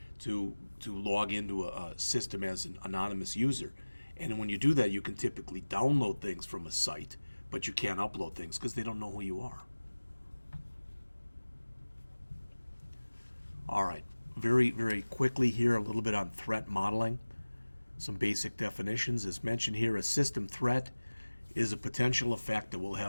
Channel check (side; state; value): both; inverted; correlation -1.00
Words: to log into a system as an anonymous user. And when you do that, you can typically download things from a site, but you can't upload things because they don't know who you are. All right, very, very quickly here, a little bit on threat modeling. Some basic definitions. As mentioned here, a system threat is a potential effect that will